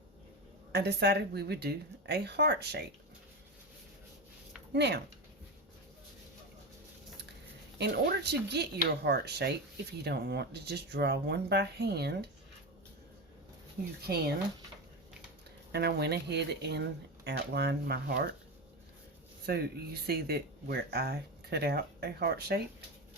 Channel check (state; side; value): normal; both; correlation 0.19